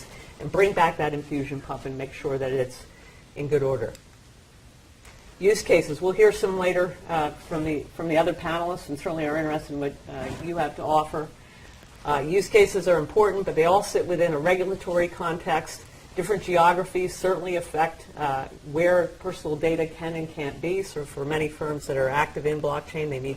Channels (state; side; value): identical; both; correlation 1.00